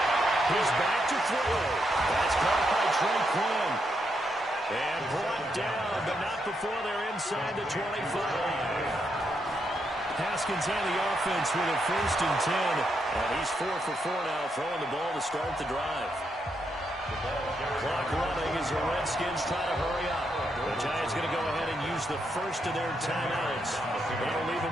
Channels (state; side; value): normal; both; correlation 0.80